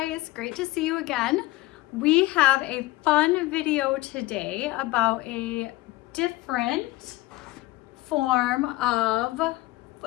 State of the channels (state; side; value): quieter; right; 19.6 dB